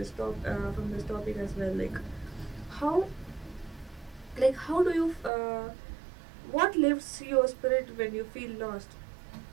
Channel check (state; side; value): drops out; left; at 5.3 s